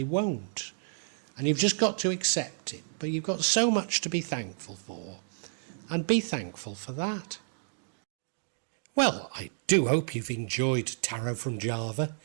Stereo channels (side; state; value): left; silent; digital silence